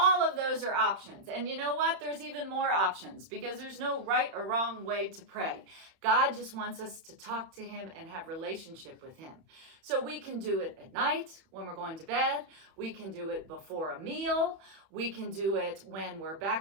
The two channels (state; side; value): late; left; 31 ms